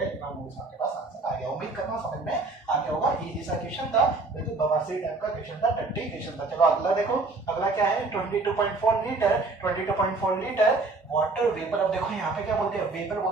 इतना मोल्स आपके पास आंसर आ गया। उम्मीद करता हूं समझ में आ गया होगा। सा क्वेश्चन था, बिल्कुल बवासीर टाइप का क्वेश्चन था, टट्टी क्वेश्चन था। चलो अगला देखो, अगला क्या है 22.4 लीटर, 22.4 लीटर वाटर वेपर। अब देखो यहाँ पे क्या बोल दिया, वेपर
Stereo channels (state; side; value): quieter; left; 3.6 dB